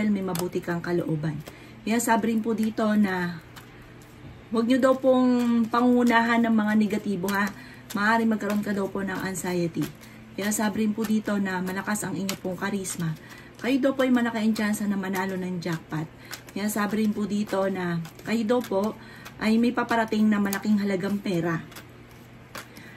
may mabuti kang kalooban. Kaya sabi rin po dito na huwag nyo daw pong pangunahan ng mga negatibo ha. Maaaring magkaroon ka daw po ng anxiety. Kaya sabi rin po dito na malakas ang inyo pong karisma. Kayo daw po ay malaki ang tsansa na manalo ng jackpot. Kaya sabi rin po dito na kayo daw po ay may paparating na malaking halagang pera.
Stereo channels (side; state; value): both; identical; correlation 1.00